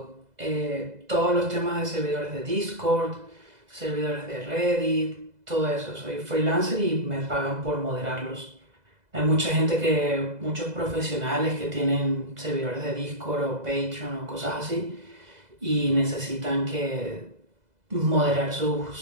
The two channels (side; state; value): left; late; 2.0 ms